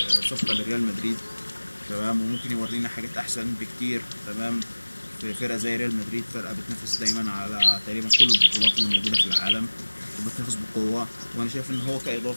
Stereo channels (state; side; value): inverted; both; correlation -1.00